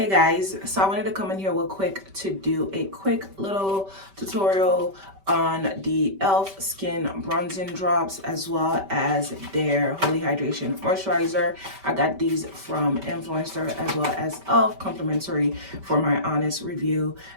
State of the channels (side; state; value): left; late; 5.2 ms